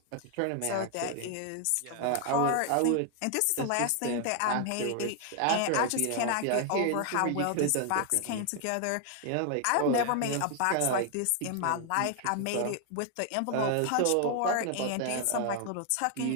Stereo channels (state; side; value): different; both; correlation 0.00